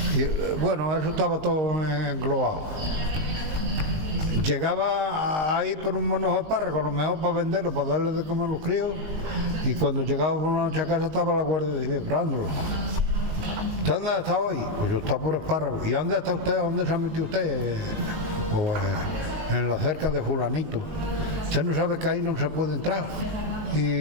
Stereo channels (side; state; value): left; late; 19 ms